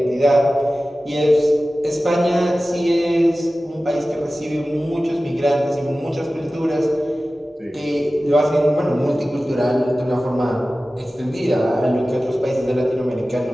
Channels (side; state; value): both; normal; correlation 0.96